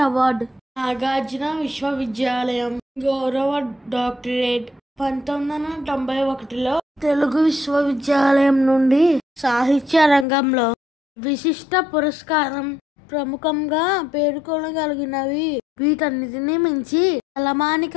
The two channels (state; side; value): drops out; right; at 10.2 s